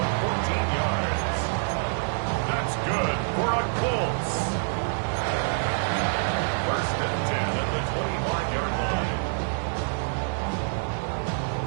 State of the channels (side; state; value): left; silent; digital silence